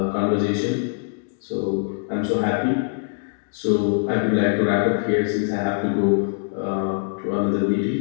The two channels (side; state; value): right; silent; digital silence